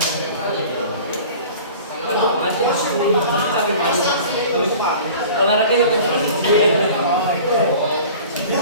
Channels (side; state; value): both; inverted; correlation -0.43